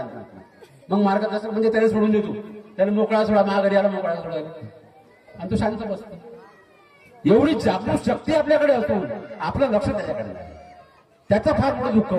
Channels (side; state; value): both; identical; correlation 1.00